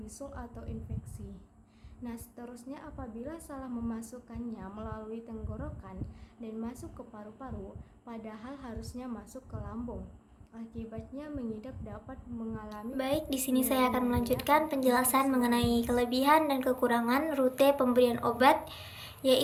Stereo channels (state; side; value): identical; both; correlation 1.00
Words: atau infeksi. Nah, seterusnya apabila salah memasukkannya melalui tenggorokan dan masuk ke paru-paru, padahal harusnya masuk ke lambung. Akibatnya mengidap dapat mengalami. Baik, di sini saya akan melanjutkan penjelasan mengenai kelebihan dan kekurangan rute pemberian obat,